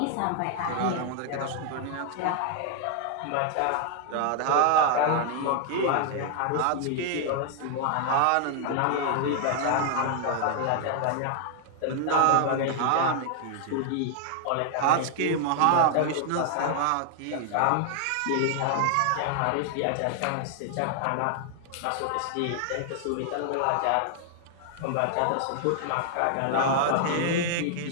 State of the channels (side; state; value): both; different; correlation 0.00